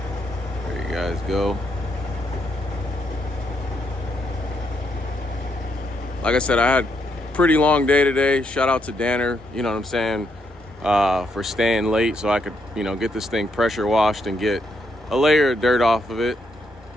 There you guys go. Like I said, I had a pretty long day today. Shout out to Danner, you know what I'm saying, for staying late so I could, you know, get this thing pressure washed and get a layer of dirt off of it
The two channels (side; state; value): both; normal; correlation 0.77